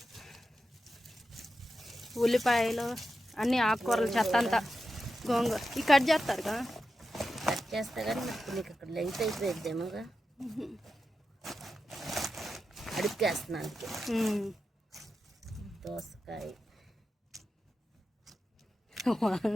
ఉల్లిపాయలు అన్ని ఆకుకూరలు చెత్త అంతా గోంగూర ఈ కట్ చేస్తారు కదా. కట్ చేస్తా కానీ నీకు అక్కడ లెంత్ అయిపోయిద్దేమోగా, అడుక్కేస్తున్నాను. దోసకాయ,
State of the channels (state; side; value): normal; both; correlation 0.90